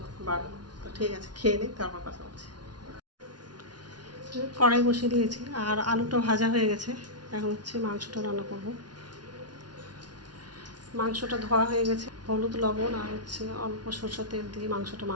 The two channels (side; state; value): left; late; 0.69 ms